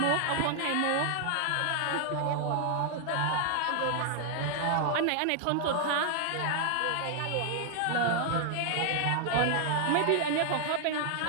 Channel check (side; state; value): both; different; correlation 0.00